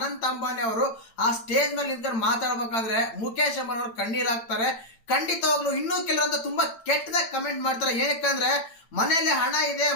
ಅಂಬಾನಿ ಅವರು ಆ ಸ್ಟೇಜ್ ಮೇಲೆ ನಿಂತ್ಕೊಂಡು ಮಾತಾಡ್ಬೇಕಾದ್ರೆ ಮುಖೇಶ್ ಅಂಬಾನಿ ಅವರು ಕಣ್ಣೀರಾಗ್ತಾರೆ. ಖಂಡಿತವಾಗ್ಲೂ ಇನ್ನೂ ಕೆಲವರಂತ ತುಂಬಾ ಕೆಟ್ಟದಾಗ ಕಮೆಂಟ್ ಮಾಡ್ತಾರೆ. ಏನಕ್ಕಂದ್ರೆ ಮನೇಲಿ ಹಣ ಇದೆ,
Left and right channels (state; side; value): late; right; 8.9 ms